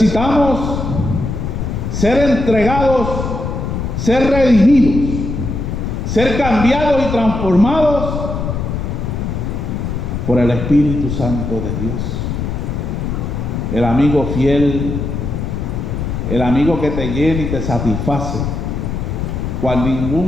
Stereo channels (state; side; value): noise; left; rumble, 3 dB below the sound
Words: ser entregados, ser redimidos, ser cambiados y transformados por el Espíritu Santo de Dios. El amigo fiel, el amigo que te llena y te satisface, cual